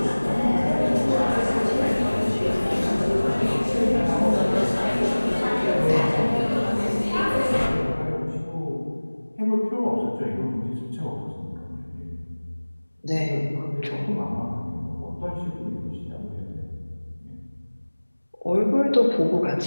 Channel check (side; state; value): both; inverted; correlation -1.00